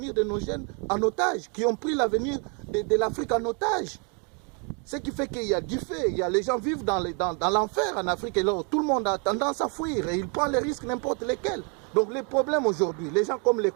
de nos jeunes en otage, qui ont pris l'avenir de l'Afrique en otage. Ce qui fait qu'il y a du fait, les gens vivent dans l'enfer en Afrique et là, tout le monde a tendance à fuir et ils prennent les risques n'importe lesquels. Donc les problèmes aujourd'hui, les gens comme les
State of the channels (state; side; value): quieter; left; 36.7 dB